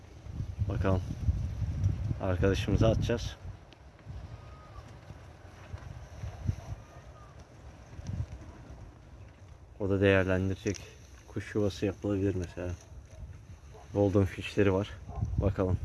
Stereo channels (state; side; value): identical; both; correlation 1.00